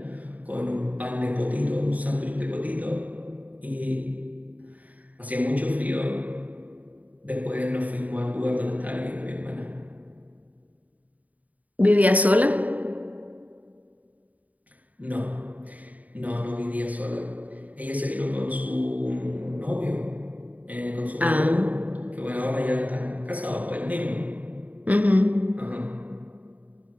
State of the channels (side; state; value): left; late; 0.074 ms